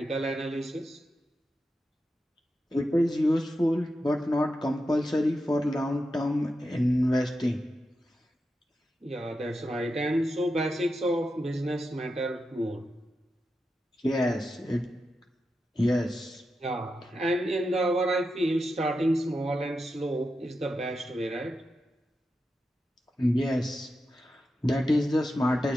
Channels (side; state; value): both; normal; correlation 0.89